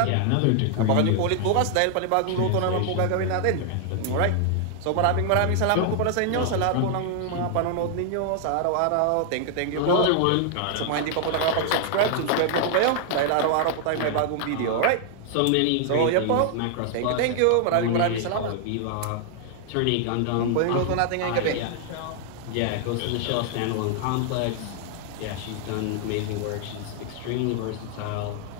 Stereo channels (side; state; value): both; different; correlation 0.00